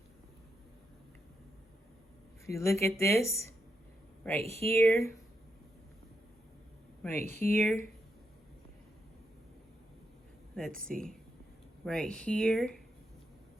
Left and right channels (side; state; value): both; normal; correlation 0.82